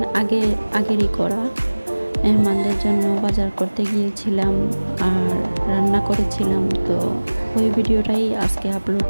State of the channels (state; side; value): inverted; both; correlation -1.00